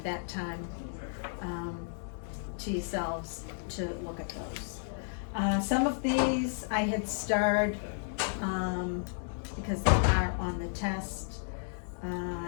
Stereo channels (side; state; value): right; silent; digital silence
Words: that time to yourselves to look at those. Some of these I had starred because they are on the test.